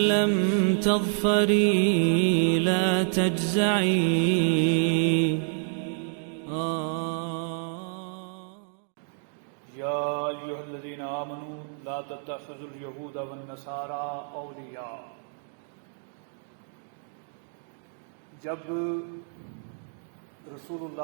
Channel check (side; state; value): left; silent; digital silence